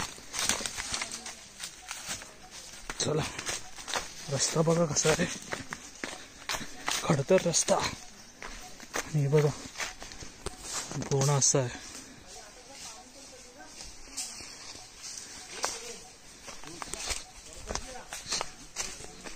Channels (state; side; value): identical; both; correlation 1.00